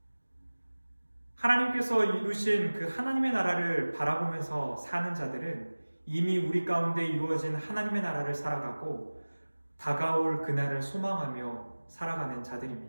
하나님께서 이루신 그 하나님의 나라를 바라보면서 사는 자들은 이미 우리 가운데 이루어진 하나님의 나라를 살아가고 다가올 그날을 소망하며 살아가는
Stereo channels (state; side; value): inverted; both; correlation -1.00